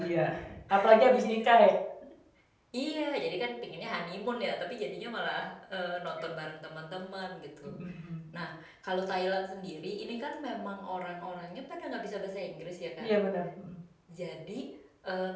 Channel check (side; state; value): both; identical; correlation 1.00